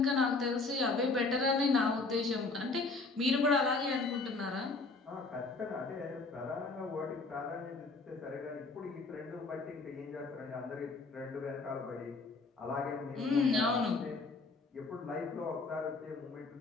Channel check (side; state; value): right; quieter; 3.7 dB